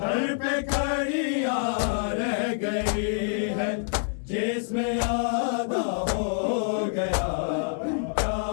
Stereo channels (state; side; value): silent; right; digital silence